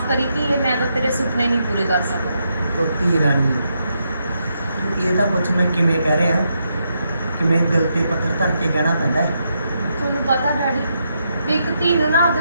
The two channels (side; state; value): both; inverted; correlation -0.81